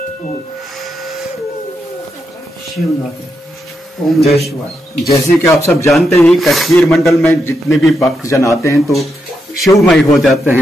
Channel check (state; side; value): normal; both; correlation 0.83